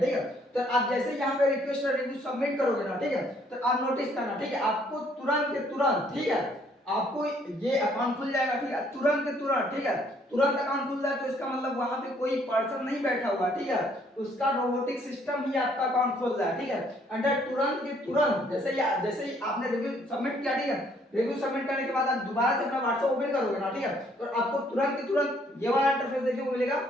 है। तो आप जैसे ही यहाँ पे रिक्वेस्ट और रिव्यू सबमिट करोगे ना, ठीक है, तो आप नोटिस करना, ठीक है, आपको तुरंत के तुरंत, ठीक है, आपको ये अकाउंट खुल जाएगा, ठीक है, तुरंत के तुरंत, ठीक है, तुरंत अकाउंट खुल जाए तो इसका मतलब वहां पे कोई पर्सन नहीं बैठा हुआ, ठीक है, उसका रोबोटिक सिस्टम ही आपका अकाउंट खोल रहा है, ठीक है। अंडर तुरंत के तुरंत जैसे ही आपने रिव्यू सबमिट किया, ठीक है, रिव्यू सबमिट करने के बाद आप दोबारा से अपना व्हाट्सएप ओपन करोगे ना, ठीक है, तो आपको तुरंत के तुरंत ये वाला इंटरफेस देखने को मिलेगा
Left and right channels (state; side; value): normal; both; correlation 0.65